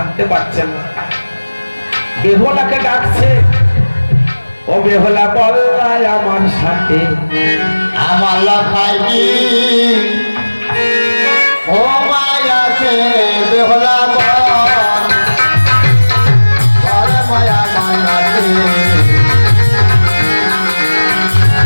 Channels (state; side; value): inverted; both; correlation -1.00